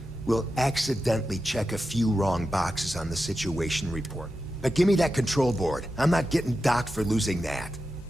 We'll accidentally check a few wrong boxes on the situation report. But give me that Control Board. I'm not getting docked for losing that.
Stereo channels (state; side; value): normal; both; correlation 0.90